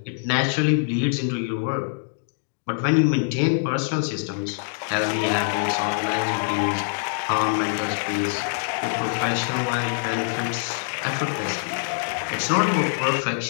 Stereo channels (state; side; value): silent; right; digital silence